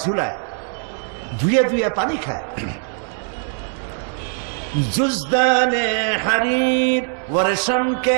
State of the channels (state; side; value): silent; left; 59 dB below the other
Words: ঝুলায়, ধুয়ে ধুয়ে পানি খায়। जुज़दाने हरीर वर्षम